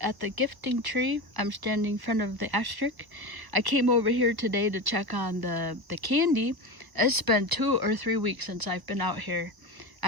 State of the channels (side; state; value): left; late; 1.1 ms